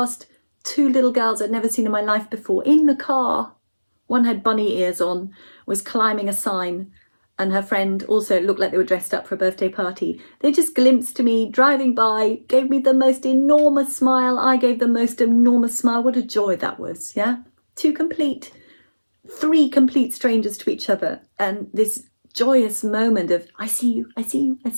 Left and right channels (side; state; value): both; inverted; correlation -1.00